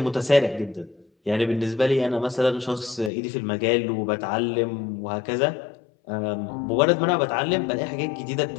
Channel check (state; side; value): drops out; right; at 3.1 s